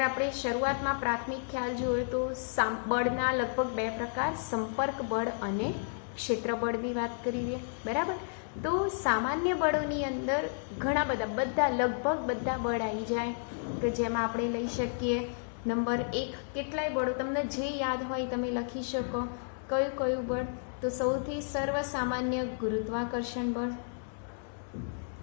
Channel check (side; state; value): right; silent; digital silence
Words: આપણે શરૂઆતમાં પ્રાથમિક ખ્યાલ જોઈએ તો બળના લગભગ બે પ્રકાર, સંપર્ક બળ અને ક્ષેત્ર બળની વાત કરી દઈએ, બરાબર। તો સામાન્ય બળોની અંદર ઘણા બધા લગભગ બધા બળ આવી જાય, કે જેમાં આપણે લઈ શકીએ નંબર 1, કેટલાય બળો તમને જે યાદ હોય તમે લખી શકો। કયું કયું બળ? તો સૌથી સર્વસામાન્ય ગુરુત્વાકર્ષણ બળ,